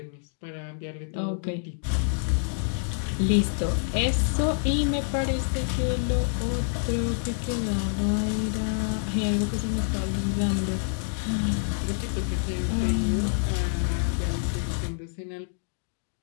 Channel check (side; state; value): right; silent; digital silence